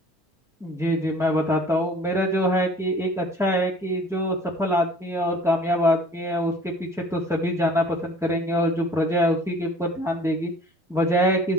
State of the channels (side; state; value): both; normal; correlation 0.50